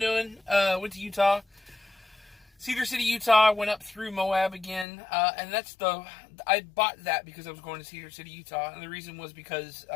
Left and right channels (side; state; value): right; drops out; at 4.9 s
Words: Went to Utah. Cedar City, Utah. Went up through Moab again, and I bought that because I was going to Cedar City, Utah, and the reason was because